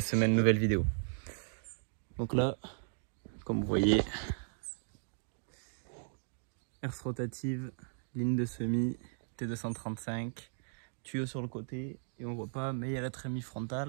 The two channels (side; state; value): left; silent; digital silence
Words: semaine, nouvelle vidéo. Donc là, comme vous voyez, herse rotative, ligne de semis, T235, tuyau sur le côté et on voit pas, mais il y a la trémie